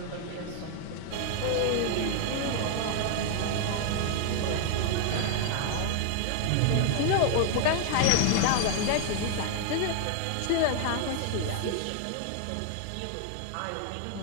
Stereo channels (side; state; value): both; different; correlation 0.00